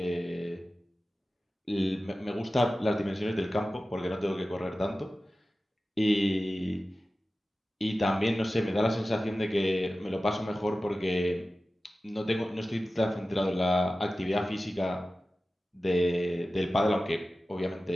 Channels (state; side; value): normal; both; correlation 0.95